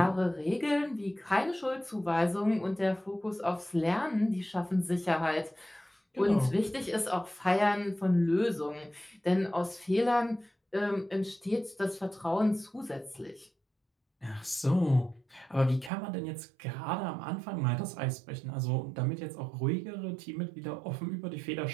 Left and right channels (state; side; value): drops out; left; at 15.9 s